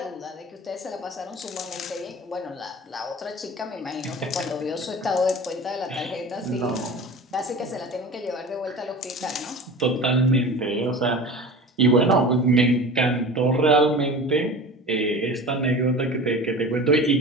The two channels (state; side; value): normal; both; correlation 0.35